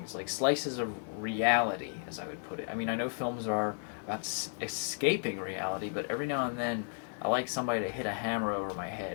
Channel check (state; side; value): silent; right; 55 dB below the other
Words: like slices of reality, as I would put it. I mean, I know films are about escaping reality, but every now and then I like somebody to hit a hammer over my head